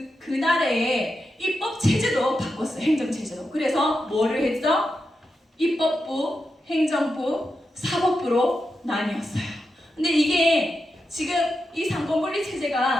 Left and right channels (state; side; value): normal; both; correlation 0.88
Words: 그 나라의 입법 체제도 바꿨어요. 행정 체제도. 그래서 뭐를 했죠? 입법부, 행정부, 사법부로 나뉘었어요. 근데 이게 지금 이 상권분리